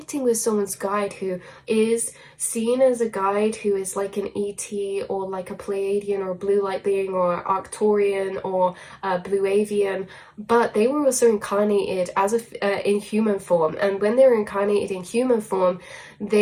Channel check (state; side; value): identical; both; correlation 1.00